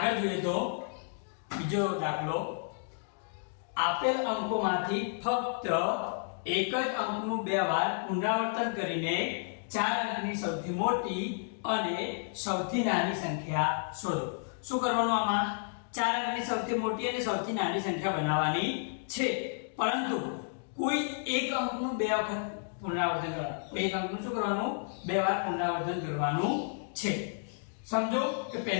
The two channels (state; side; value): silent; right; digital silence